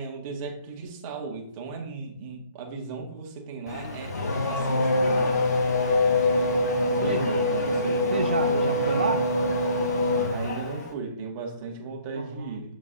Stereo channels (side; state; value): both; inverted; correlation -0.60